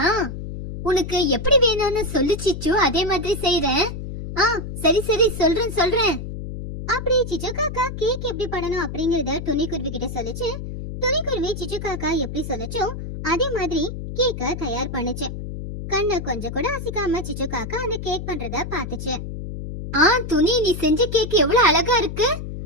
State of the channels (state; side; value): noise; left; hum, 7 dB below the sound